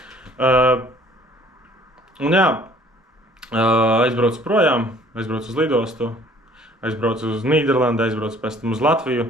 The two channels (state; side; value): normal; both; correlation 0.55